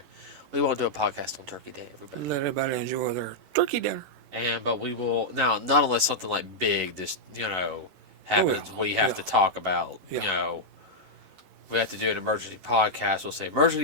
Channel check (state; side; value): late; left; 11 ms